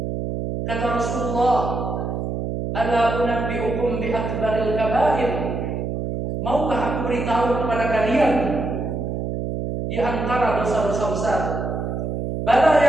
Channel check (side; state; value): right; noise; hum, 3 dB below the sound